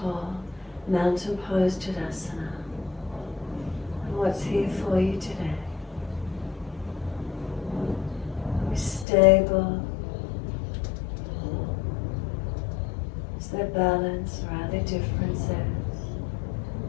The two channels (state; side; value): drops out; right; at 9.1 s